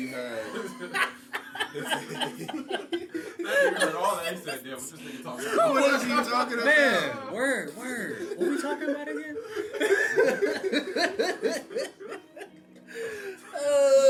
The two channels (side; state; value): both; identical; correlation 1.00